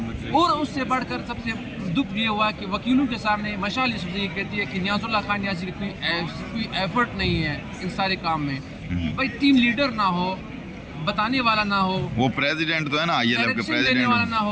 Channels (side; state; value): both; identical; correlation 1.00